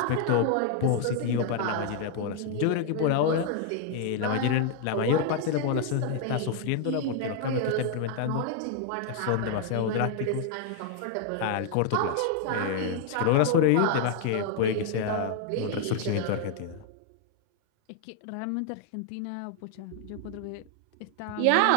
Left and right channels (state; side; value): different; both; correlation 0.00